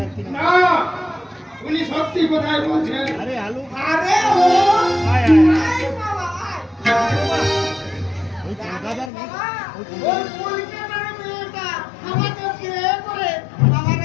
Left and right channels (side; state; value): right; drops out; at 9.1 s